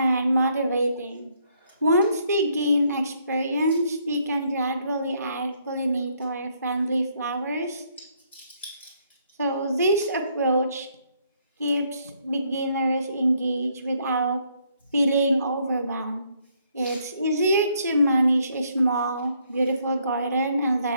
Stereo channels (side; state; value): both; inverted; correlation -0.70